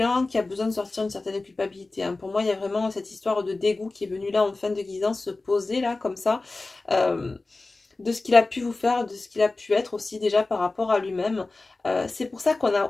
qui a besoin de sortir une certaine culpabilité, hein. Pour moi, il y a vraiment cette histoire de dégoût qui est venue là en fin de guidance se poser là, comme ça. De ce qu'il a pu vous faire, de ce qu'il a pu être aussi déjà par rapport à lui-même. C'est pour ça qu'on a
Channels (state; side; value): quieter; right; 3.3 dB